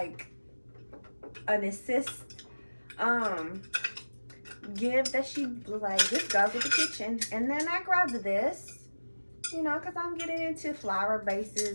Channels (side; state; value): both; inverted; correlation -1.00